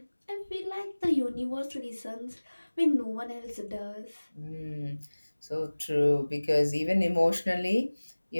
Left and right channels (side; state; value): both; inverted; correlation -1.00